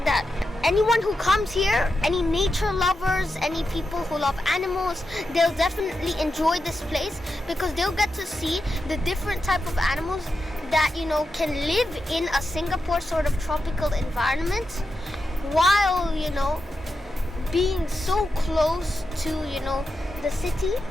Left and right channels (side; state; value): both; normal; correlation 0.88